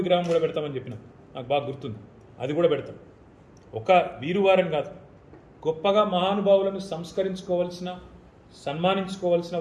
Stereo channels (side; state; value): both; identical; correlation 1.00